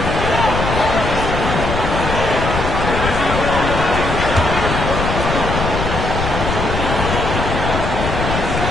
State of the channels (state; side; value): noise; left; rumble, 3 dB below the sound